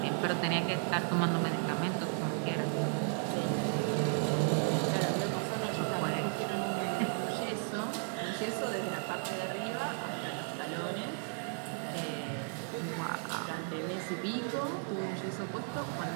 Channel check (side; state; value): left; silent; 55 dB below the other